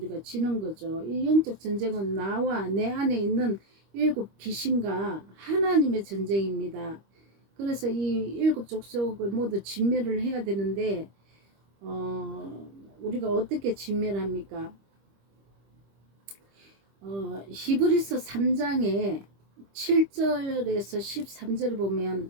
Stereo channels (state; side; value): late; left; 25 ms